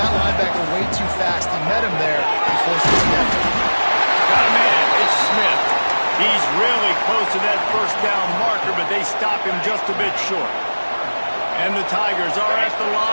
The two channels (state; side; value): inverted; both; correlation -1.00